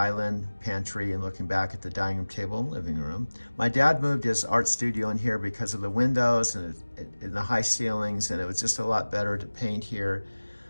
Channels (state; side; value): inverted; both; correlation -1.00